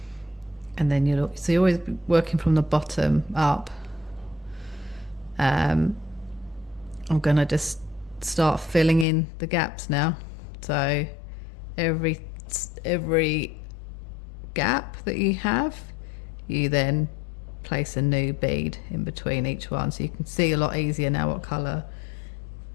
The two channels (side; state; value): right; drops out; at 9.1 s